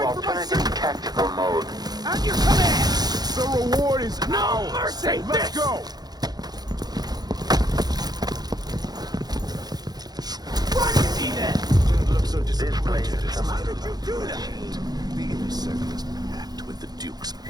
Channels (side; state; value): left; late; 0.19 ms